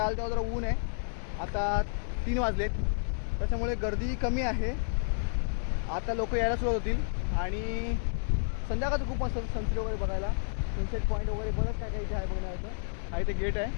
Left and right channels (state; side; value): silent; right; digital silence